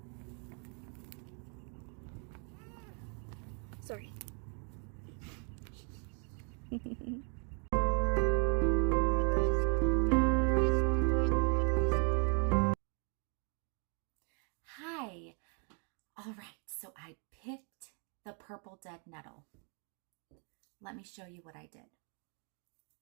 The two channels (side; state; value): left; quieter; 39.5 dB